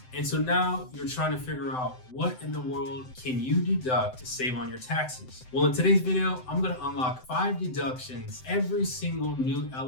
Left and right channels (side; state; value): right; late; 7.8 ms